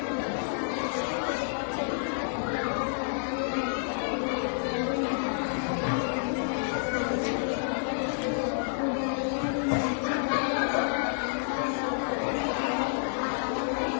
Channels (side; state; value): right; silent; digital silence